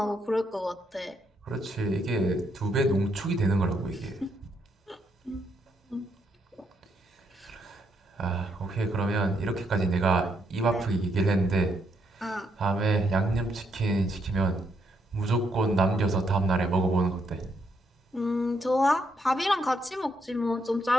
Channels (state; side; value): normal; both; correlation 0.76